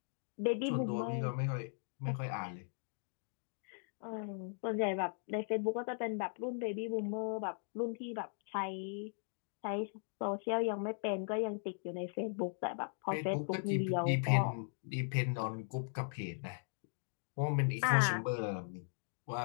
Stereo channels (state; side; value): silent; right; digital silence